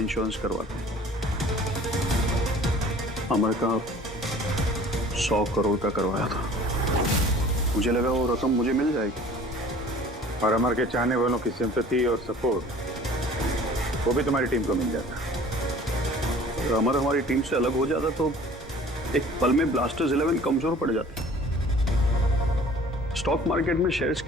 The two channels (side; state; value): both; normal; correlation 0.48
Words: करवाते हैं। अमर का 100 करोड़ का करवाया था। मुझे लगा वो रकम मुझे मिल जाएगी, और अमर के चाहने वालों की सिंपैथी और सपोर्ट वो भी तुम्हारी टीम को मिल जाता। अगर अमर हमारी टीम से अलग हो जाता तो एक पल में ब्लास्टर्स 11 कमजोर पड़ जाती। स्टॉक मार्केट में शेयर्स